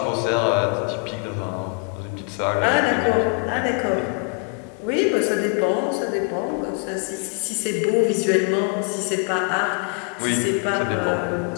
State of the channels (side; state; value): right; quieter; 34.0 dB